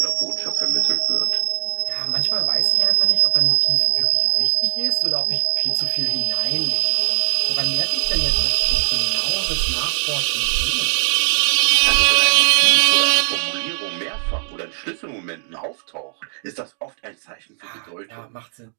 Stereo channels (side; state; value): left; silent; 60 dB below the other